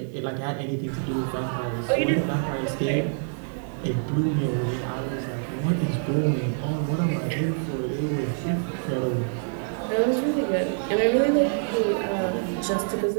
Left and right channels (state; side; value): silent; left; digital silence